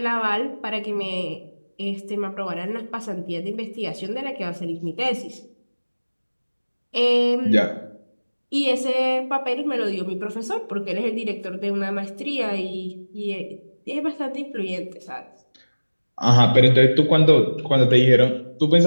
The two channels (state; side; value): inverted; both; correlation -1.00